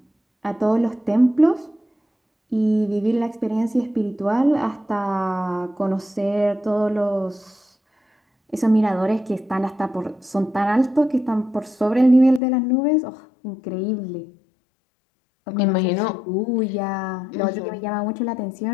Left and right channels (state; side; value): drops out; right; at 12.4 s